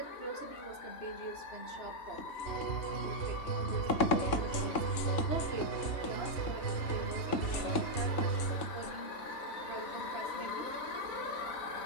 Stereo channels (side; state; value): right; late; 3.6 ms